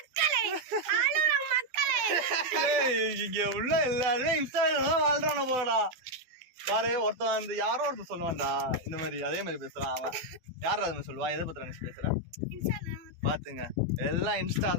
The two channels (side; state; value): left; late; 12 ms